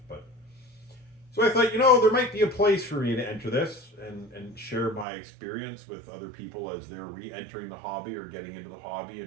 But so I thought, there might be a place for me to enter this and share my experience with other people as they're re-entering the hobby or getting into the hobby,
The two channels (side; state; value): left; drops out; at 5.1 s